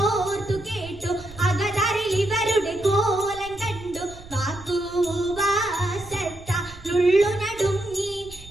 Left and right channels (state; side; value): noise; right; rumble, 17 dB below the sound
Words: കേട്ടു അകതറിൽ ഇവരുടെ കോലം കണ്ടു വാക്കുവാസത്തുള്ളു നടുങ്ങി